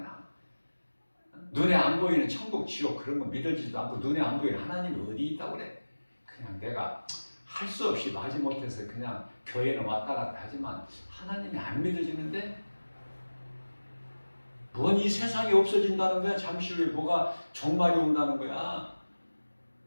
눈에 안 보이는 천국, 지옥 그런 거 믿어지지도 않고 눈에 안 보이는 하나님이 어디 있다고 그래. 그냥 내가 할 수 없이 마지못해서 그냥 교회는 왔다 갔다 하지만 하나님이 안 믿어지는데 뭔 이 세상이 없어진다는 거야. 잠시 후에 뭐가 종말이 온다는 거야.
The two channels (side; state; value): both; inverted; correlation -1.00